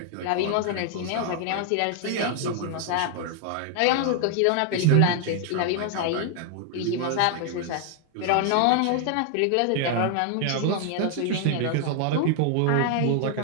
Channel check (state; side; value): different; both; correlation 0.00